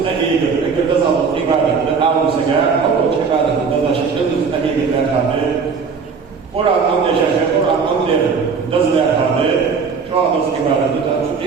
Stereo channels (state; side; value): quieter; left; 5.5 dB